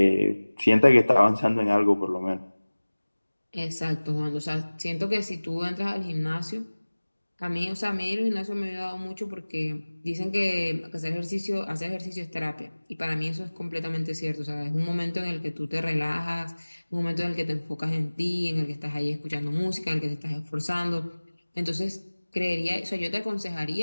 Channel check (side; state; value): both; inverted; correlation -1.00